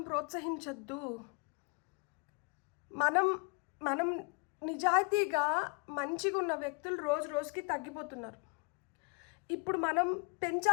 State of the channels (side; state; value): right; quieter; 35.7 dB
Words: ప్రోత్సహించొద్దు. మనం నిజాయితీగా మంచిగా ఉన్న వ్యక్తులు రోజు రోజుకి తగ్గిపోతున్నారు. ఇప్పుడు మనం